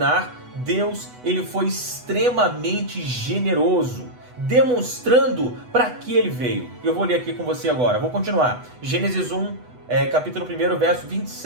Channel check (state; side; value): late; left; 8.1 ms